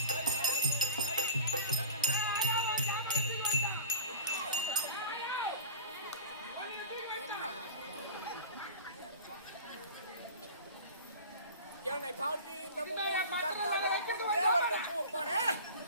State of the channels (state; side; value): inverted; both; correlation -0.36